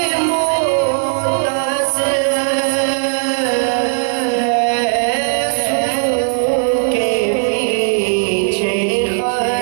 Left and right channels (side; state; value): left; silent; digital silence